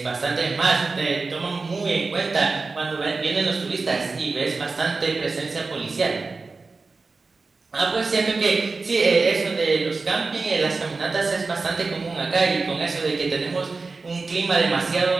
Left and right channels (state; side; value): quieter; left; 4.0 dB